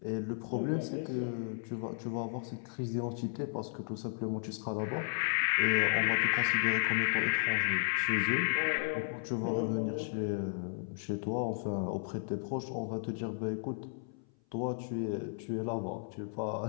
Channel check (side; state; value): right; silent; 55 dB below the other